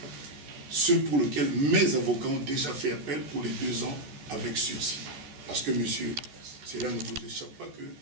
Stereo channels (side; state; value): left; late; 14 ms